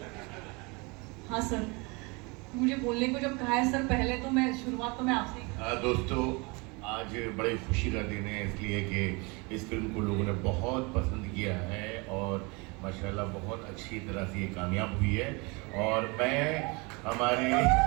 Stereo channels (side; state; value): left; quieter; 28.1 dB